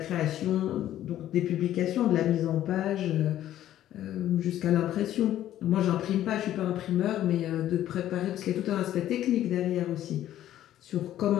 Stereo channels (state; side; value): quieter; right; 12.5 dB